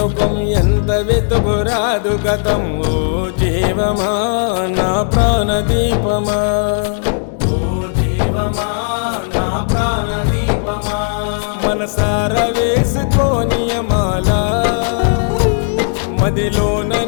ఎంత వెతుకురాదు గతం ఓ జీవమా నా ప్రాణదీపమా ఓ జీవమా నా ప్రాణదీపమా మనసార వేసుకోనియమాల మదిలోన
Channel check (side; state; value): right; silent; digital silence